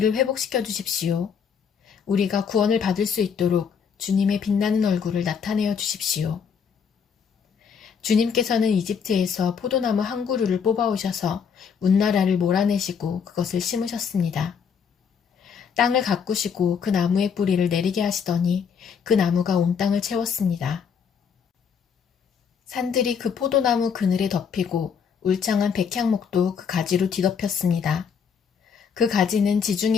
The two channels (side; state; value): right; quieter; 6.8 dB